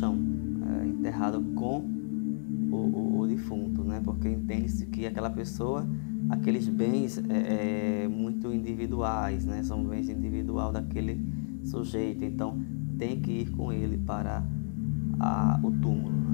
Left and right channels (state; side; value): silent; right; 57 dB below the other